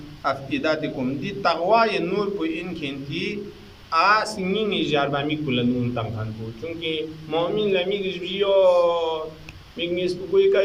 Afidatikum di taqwa ye nur pu in khenti a singing jarba mi kulanun tangkan pu chunki mu'min la mi gijbiyo mignis pu koi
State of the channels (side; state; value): both; identical; correlation 1.00